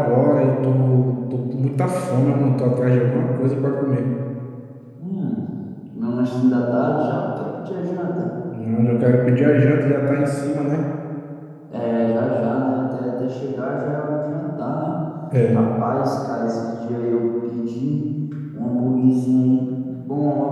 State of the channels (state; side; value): identical; both; correlation 1.00